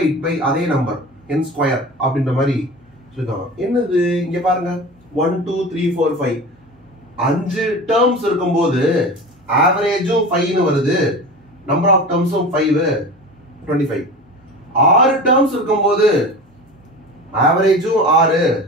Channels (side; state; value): both; normal; correlation 0.33